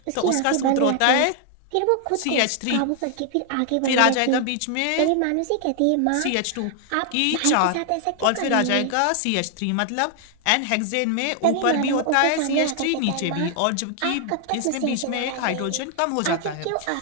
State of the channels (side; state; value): both; different; correlation 0.00